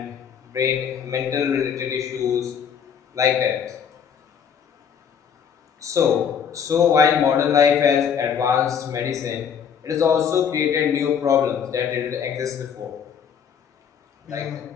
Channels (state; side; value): quieter; right; 7.5 dB